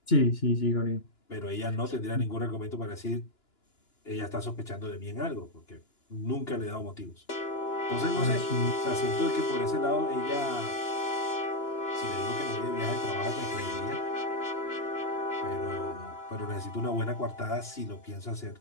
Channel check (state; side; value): late; right; 2.9 ms